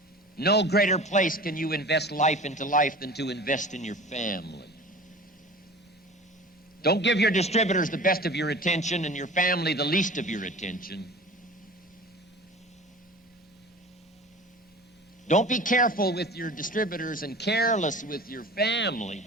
No greater place can you invest life into life than to invest in your family. Don't give your distributors the best of your attention and your family the least of your attention. Don't be careful with your distributors and careless with your family.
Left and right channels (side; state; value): both; normal; correlation 0.39